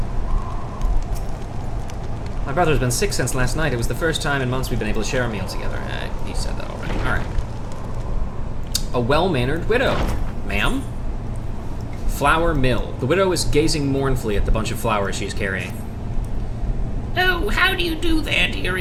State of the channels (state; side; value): identical; both; correlation 1.00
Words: My brother's been sick since last night. It was the first time in months we've been able to share a meal together. He said that already. All right. A well-mannered widow. Ma'am? Flour mill. The widow is gazing mournfully at the bunch of flowers she's carrying. Oh, how do you do there,